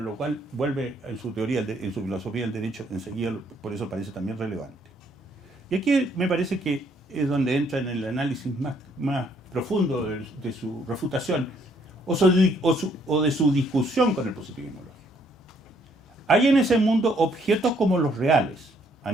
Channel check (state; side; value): normal; both; correlation 0.68